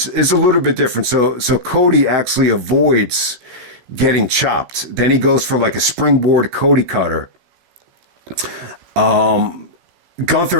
It's a little bit different. So Cody actually avoids getting chopped. Then he goes for like a springboard Cody cutter.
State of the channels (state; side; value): late; left; 16 ms